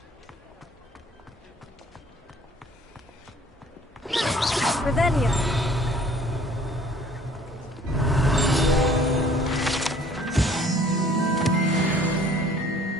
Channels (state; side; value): normal; both; correlation 0.55